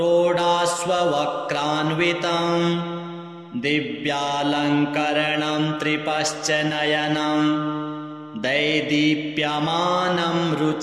दिव्यालङ्करणं त्रिपश्च नयनं दैदीप्यमानं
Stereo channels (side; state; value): both; identical; correlation 1.00